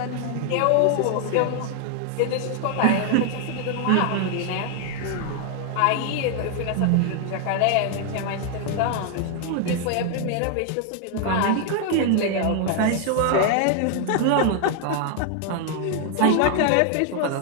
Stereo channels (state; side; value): different; both; correlation 0.00